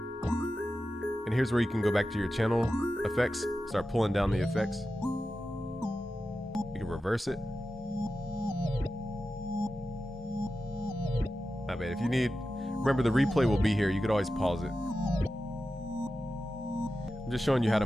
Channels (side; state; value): both; normal; correlation 0.92